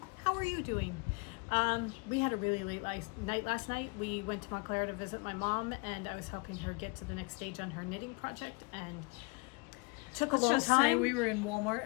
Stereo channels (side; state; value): right; quieter; 30.0 dB